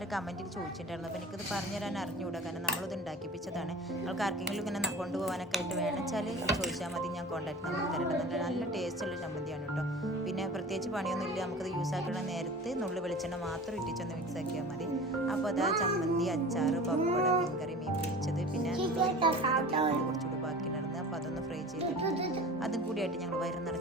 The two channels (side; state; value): both; normal; correlation 0.38